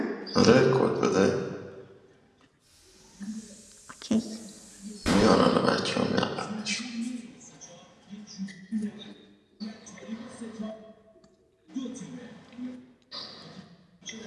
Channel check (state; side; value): identical; both; correlation 1.00